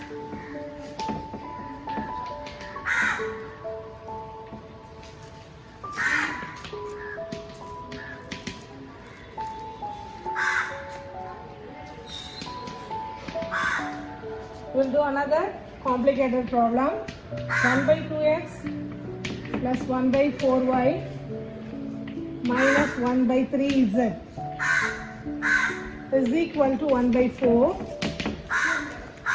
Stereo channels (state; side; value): identical; both; correlation 1.00